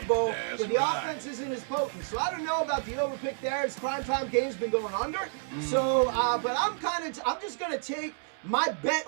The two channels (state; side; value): silent; left; 58 dB below the other